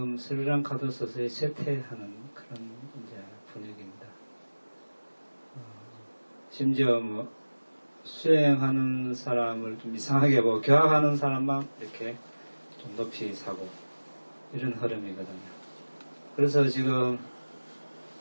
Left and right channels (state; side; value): inverted; both; correlation -1.00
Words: 스리랑카도 서서히 쇠퇴하는 그런 이제 분위기입니다. 심지어 뭐 수행하는 사람을 좀 이상하게 보고 교학하는 사람만 이렇게 좀 높이 사고 이런 흐름이거든요. 그래서 지금